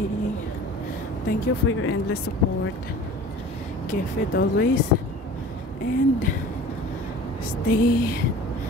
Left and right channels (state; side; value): normal; both; correlation 0.42